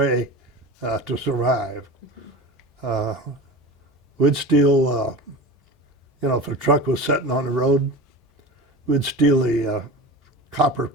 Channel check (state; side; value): normal; both; correlation 0.32